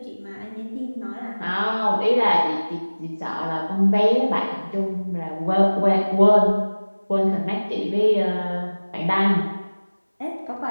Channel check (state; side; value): inverted; both; correlation -1.00